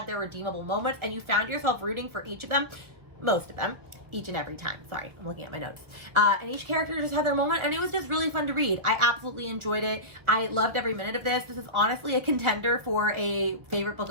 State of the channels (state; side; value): late; left; 1.6 ms